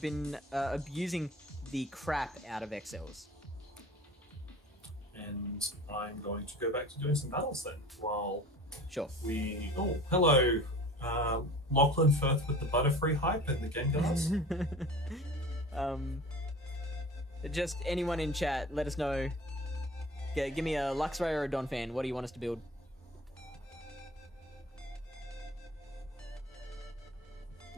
been abusing the crap out of XLs. And I'm going to go back to doing some battles then, while Sure. we... Oh, hello, Lachlan Firth with the Butterfree hype and the Gengars. Just anyone in chat, let us know. Give me a Luxray or a Donphan. What do you want us to build?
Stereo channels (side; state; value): both; normal; correlation 0.41